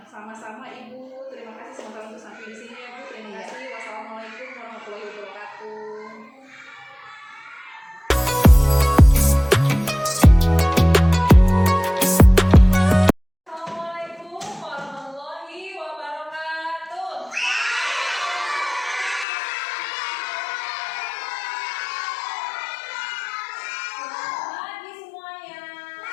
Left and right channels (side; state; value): right; drops out; at 19.2 s